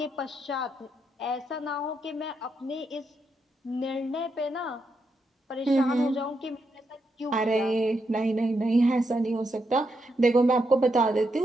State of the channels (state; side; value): normal; both; correlation 0.82